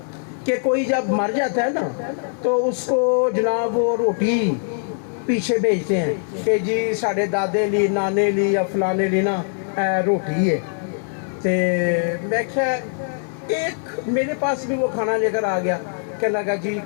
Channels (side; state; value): right; silent; 61 dB below the other